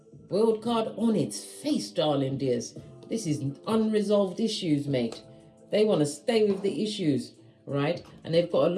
World card on its face, darling dears. This is unresolved issues, mate. They want to stay with the issues, right? And they've got a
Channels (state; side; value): identical; both; correlation 1.00